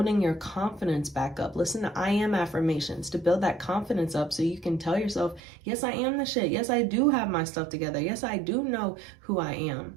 your confidence back up. Listen to I am affirmations to build that confidence up, so you can tell yourself, yes, I am the shit. Yes, I do have my stuff together. Yes, I do know who I am.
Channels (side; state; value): left; drops out; at 5.4 s